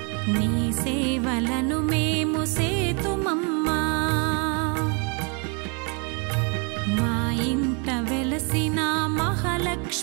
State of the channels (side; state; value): left; quieter; 34.9 dB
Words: నీ సేవలను మేము సేతుమమ్మా. మా ఇంట వెలసిన